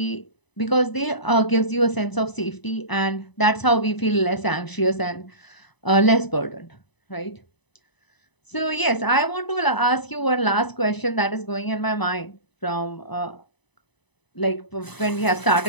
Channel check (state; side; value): late; right; 1.0 ms